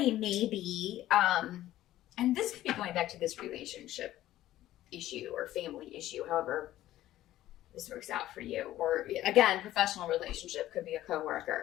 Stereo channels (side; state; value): right; quieter; 14.2 dB